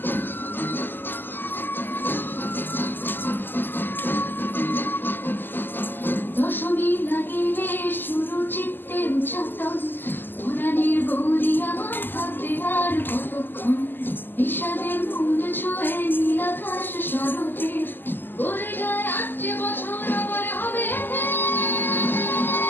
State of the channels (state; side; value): late; right; 0.093 ms